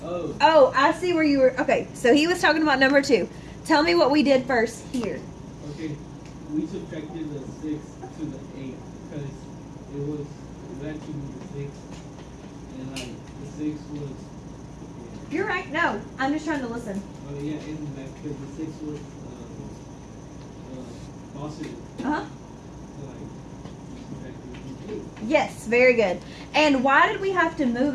Oh. Oh, I see where you were. Okay, so he was talking about number 2. Tell me what we did first here. Okay. We subtracted the 6 to the 8 because it was actually the 6, and like the 6 was. You're right. No, I'm just trying to listen. Oh yeah, and like because the 6 was positive. Uh-huh. So like subtracted the 8. Yes, very good. And why did we have to move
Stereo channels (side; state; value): both; identical; correlation 1.00